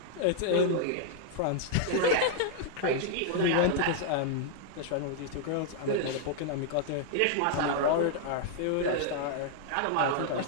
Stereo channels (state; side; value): different; both; correlation -0.01